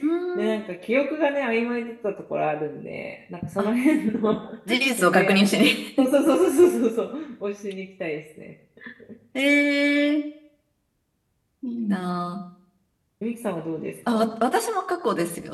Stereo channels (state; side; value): identical; both; correlation 1.00